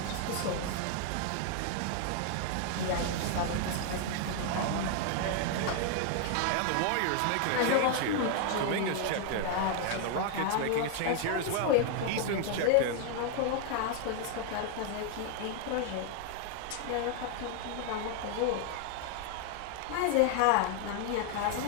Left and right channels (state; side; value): different; both; correlation 0.00